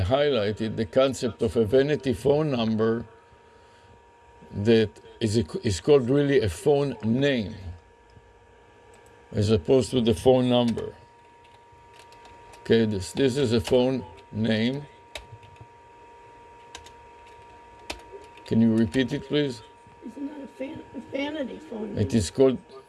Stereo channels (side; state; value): both; identical; correlation 1.00